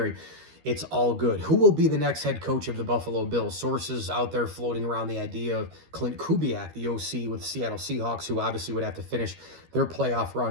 it's all good. Who will be the next head coach of the Buffalo Bills? Sources out there floating around the idea of Clint Kubiak, the OC with the Seattle Seahawks, who obviously would have to finish their playoff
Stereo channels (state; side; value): late; left; 13 ms